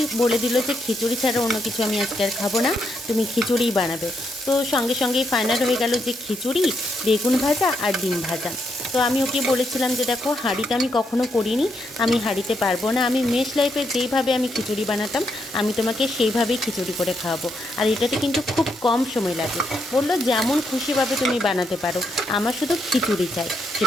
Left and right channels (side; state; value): both; normal; correlation 0.79